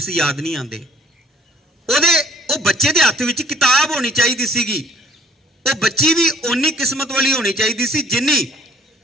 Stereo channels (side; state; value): both; normal; correlation 0.57